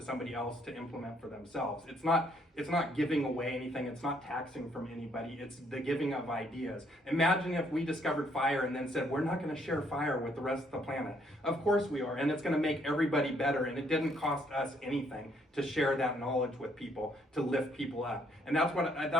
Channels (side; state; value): both; normal; correlation 0.68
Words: else to implement for themselves. It's not giving away anything. It's not taxing from anybody. It's the giving of ideas. Imagine if we discovered fire and then said, we're not going to share fire with the rest of the planet. Of course we are, and it's going to make everybody better, and it didn't cost us anything to share that knowledge with people, to lift people up. And that's